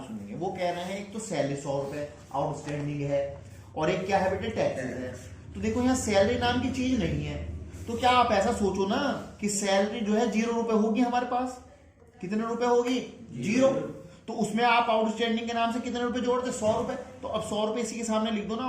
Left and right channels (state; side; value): identical; both; correlation 1.00